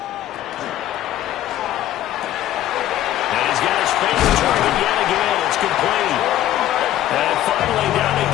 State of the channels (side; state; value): right; quieter; 13.0 dB